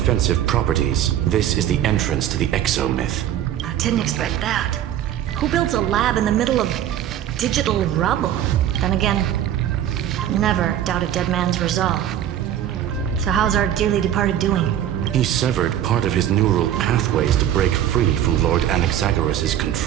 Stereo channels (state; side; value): quieter; left; 11.1 dB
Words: properties, this is the entrance to the Exo myth. I didn't expect that. Who builds a lab in the middle of digital rubble? Then again, never doubt a dead man's resolve. So how's our dearly departed doing? He severed part of his neural pathways to break free from Lord Anaxagoras'